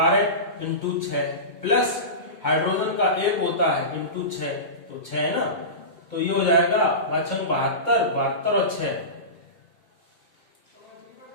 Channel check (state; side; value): late; right; 2.2 ms